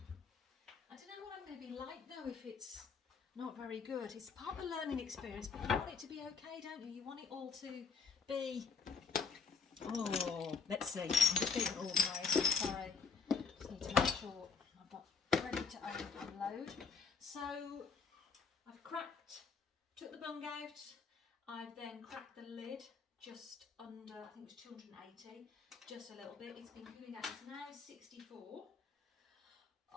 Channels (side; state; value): right; quieter; 5.1 dB